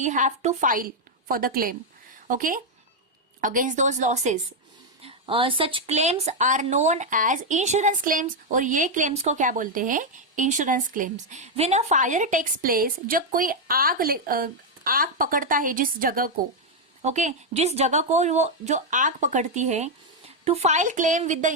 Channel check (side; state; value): both; normal; correlation 0.01